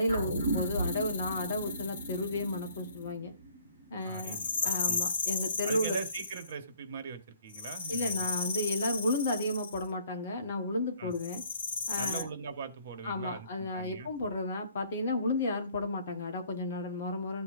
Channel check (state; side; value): inverted; both; correlation -0.59